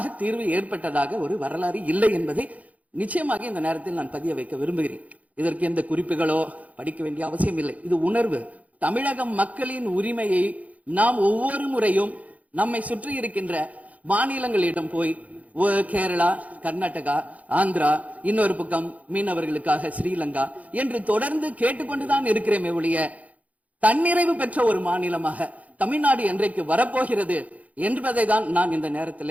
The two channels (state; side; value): late; left; 0.070 ms